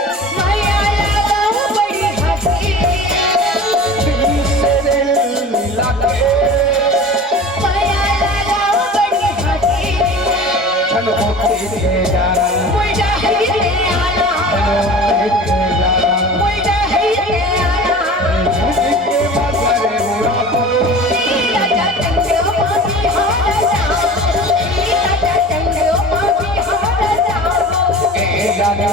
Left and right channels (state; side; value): normal; both; correlation 0.38